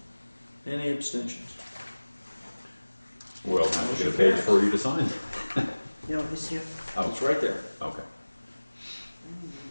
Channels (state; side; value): inverted; both; correlation -1.00